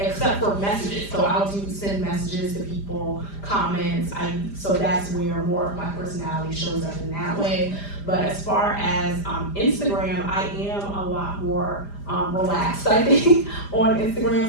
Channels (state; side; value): late; right; 5.0 ms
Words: for messages. So I'll send messages to people, comments. So that's where more of my personality shows up in that way. But as far as Instagram, I am a lot more relaxed, I think, on